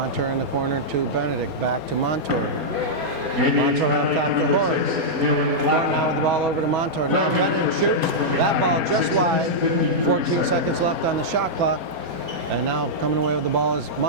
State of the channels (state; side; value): late; left; 4.3 ms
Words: in the corner to Benedict. Back to Montour. Montour on top to Horn. Now with the ball over to Montour. Now Benedict shoots. That ball just wide. 14 seconds left on the shot clock. And now coming away with the ball is